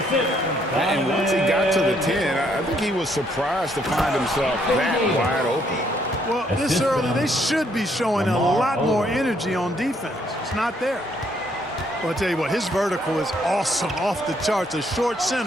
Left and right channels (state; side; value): normal; both; correlation 0.70